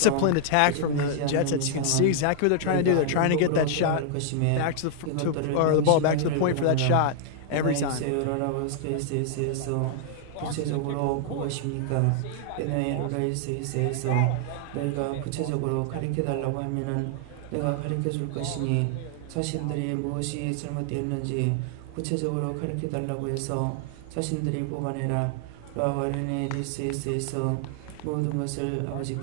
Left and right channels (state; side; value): different; both; correlation 0.00